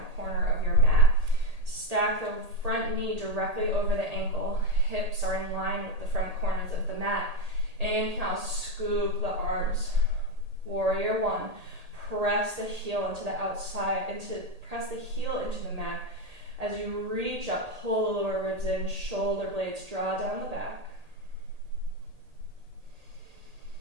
corner of your mat. Stack the front knee directly over the ankle. Hips are in line with the front corners of the mat. Inhale, scoop the arms. Warrior 1. Press the heel into the outside, press the heel into the mat. As you reach up, pull the lower ribs in, shoulder blades draw down the back.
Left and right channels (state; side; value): late; left; 1.8 ms